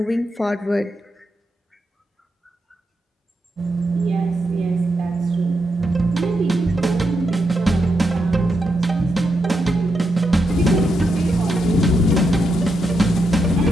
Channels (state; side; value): normal; both; correlation 0.83